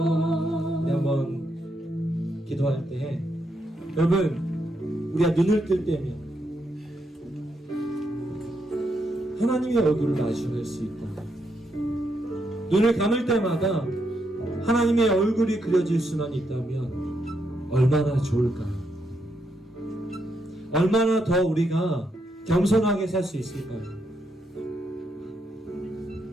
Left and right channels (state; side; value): normal; both; correlation 0.79